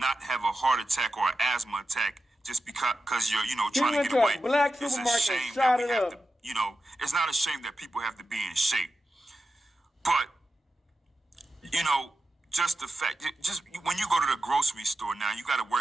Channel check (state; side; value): normal; both; correlation 0.91